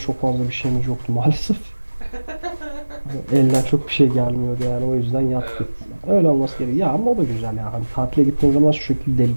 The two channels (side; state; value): both; inverted; correlation -1.00